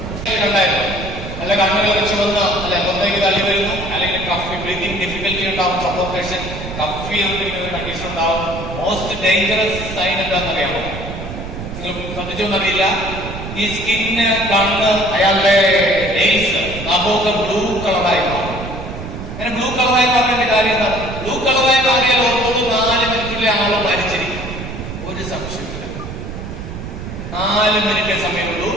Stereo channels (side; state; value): right; noise; rumble, 9 dB below the sound